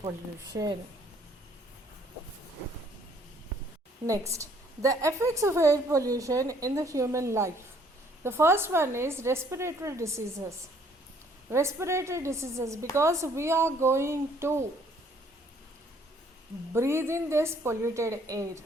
Next, the effects of air pollution in the human life. The first one is respiratory diseases. Respiratory diseases, because we are going to breathe in this polluted air.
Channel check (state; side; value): normal; both; correlation 0.62